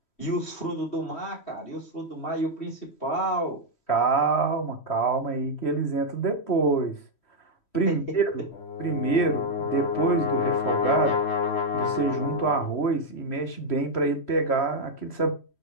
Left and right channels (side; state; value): right; late; 3.1 ms